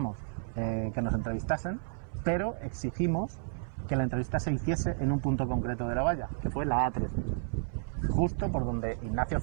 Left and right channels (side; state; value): left; silent; 57 dB below the other